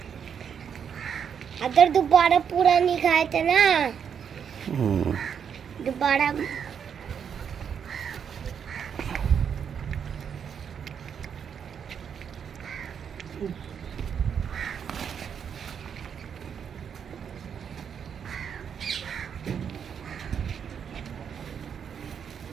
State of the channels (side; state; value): left; quieter; 7.6 dB